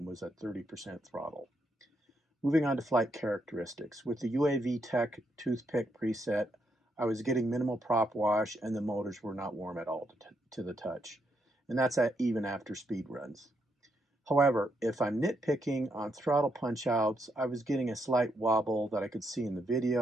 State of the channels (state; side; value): normal; both; correlation 0.78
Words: was at 30% throttle. Moving on to flight characteristics. With the UAV Tech toothpick preset, I was getting minimal prop wash and the motors were not warm at all to the touch. And that's even after speed runs. However, if I'm nitpicking on throttle punch outs, I was getting a slight wobble that I could see in the